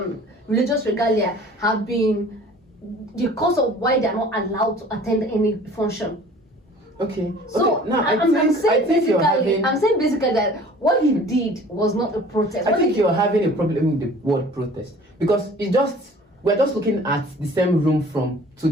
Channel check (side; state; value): both; normal; correlation 0.48